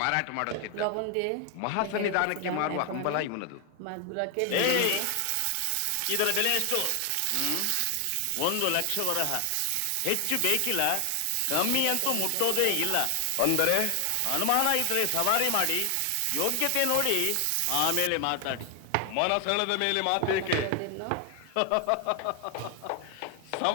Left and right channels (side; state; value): both; different; correlation 0.00